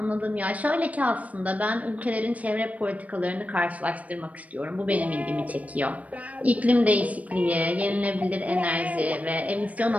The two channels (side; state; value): left; late; 0.069 ms